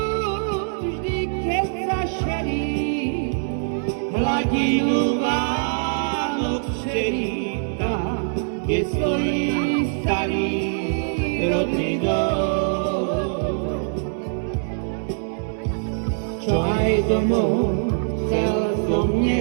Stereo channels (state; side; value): silent; left; digital silence